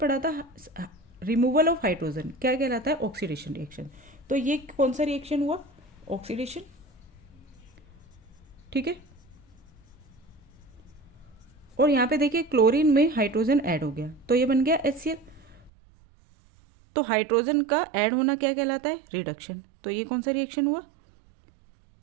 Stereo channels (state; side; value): drops out; left; at 15.7 s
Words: था रिमूवल ऑफ हाइड्रोजन क्या कहलाता है? Oxidation reaction. तो ये कौन सा रिएक्शन हुआ? ऑक्सीडेशन। ठीक है, और यहाँ पे देखिए क्लोरीन में हाइड्रोजन ऐड हो गया, तो ये बन गया HCl। तो हाइड्रोजन का ऐड होना क्या कहलाता है? रिडक्शन। तो ये कौन सा रिएक्शन हुआ?